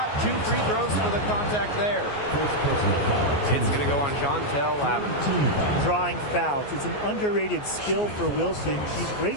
2 free throws for the contact there. It's going to go on Chantel Lavender. Drawing fouls. It's an underrated skill for Wilson. She's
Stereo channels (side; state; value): right; late; 14 ms